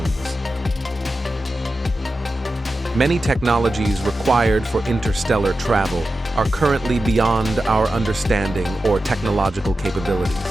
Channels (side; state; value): both; normal; correlation 0.92